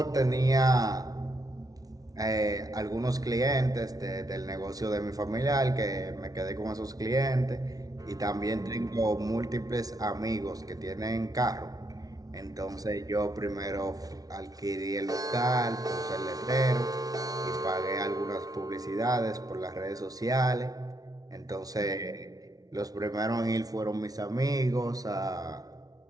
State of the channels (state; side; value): late; left; 0.18 ms